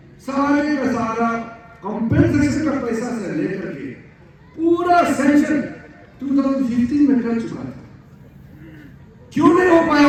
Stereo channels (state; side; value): identical; both; correlation 1.00